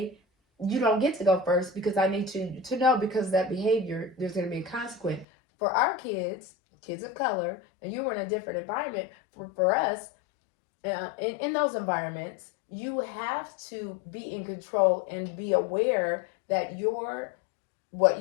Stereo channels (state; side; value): drops out; right; at 5.2 s